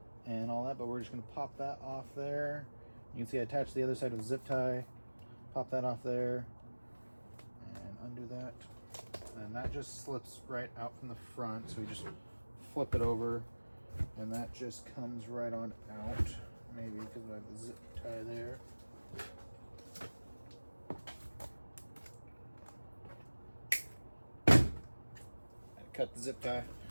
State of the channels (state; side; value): inverted; both; correlation -1.00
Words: and all that. But we're just gonna pop that off there. You can see I attached the other side with a zip tie. Pop that off there and undo that. And that just slips right out from the front, so we just flip it over and that just comes right on out. Maybe because I have the zip tie there. Cut the zip tie,